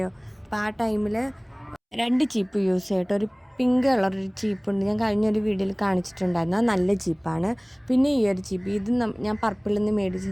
അപ്പോൾ ആ ടൈമിൽ 2 ചീപ്പ് യൂസ് ചെയ്യട്ടോ. ഒരു പിങ്ക് കളറൊരു ചീപ്പുണ്ട്, ഞാൻ കഴിഞ്ഞൊരു വീഡിയോയിൽ കാണിച്ചിട്ടുണ്ടായിരുന്നു. അത് നല്ല ചീപ്പാണ്. പിന്നെ ഈ ഒരു ചീപ്പ്, ഇത് ഞാൻ പർപ്പിളിൽ നിന്ന്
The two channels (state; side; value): identical; both; correlation 1.00